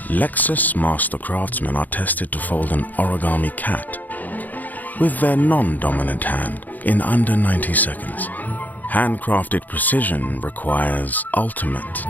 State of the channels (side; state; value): right; late; 0.082 ms